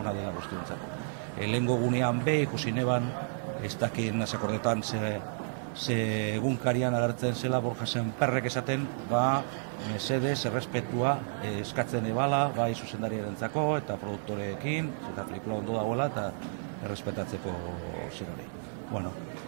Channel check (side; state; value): left; silent; 57 dB below the other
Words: dela guztiontzat. Lehengo gunean ikusi neban, ez dakit nasakordetan ze egunkarian agertzen zela Borja Sémperrek esaten, mesedez, errespetua eskatzen ebala, bai zuzendariarentzako eta produktoreekin, eta pelikula ondo dagoela eta errespetatzeko zerori.